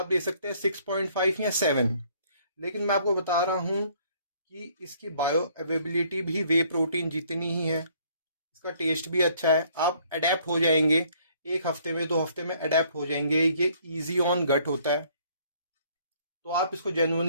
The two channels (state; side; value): inverted; both; correlation -0.62